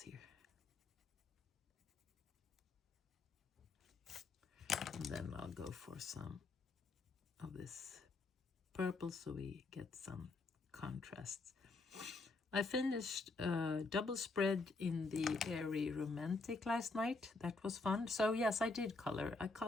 And then I'll go for some of this purple so we get some contrasts. I finished double spread in the Airy Romantic last night. That was fun. So yes, I did color. I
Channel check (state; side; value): quieter; right; 3.7 dB